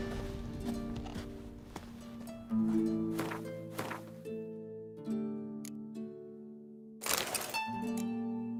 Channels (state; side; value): identical; both; correlation 1.00